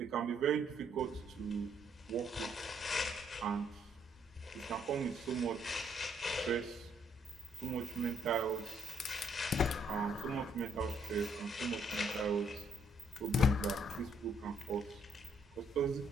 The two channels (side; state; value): both; normal; correlation 0.70